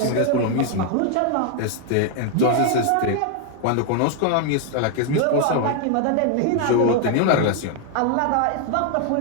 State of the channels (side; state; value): both; different; correlation 0.00